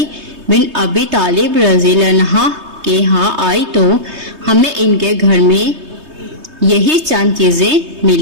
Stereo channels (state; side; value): late; left; 3.2 ms